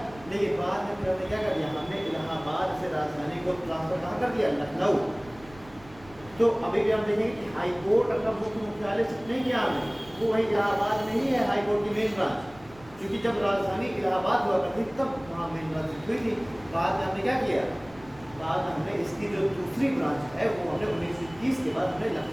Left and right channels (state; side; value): noise; right; rumble, 22 dB below the sound